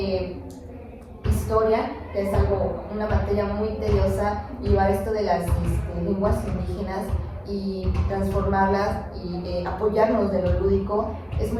historia, que es una materia muy tediosa, llevar esto de las lenguas indígenas y transformarlas y apoyarnos de lo lúdico. Es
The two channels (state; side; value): identical; both; correlation 1.00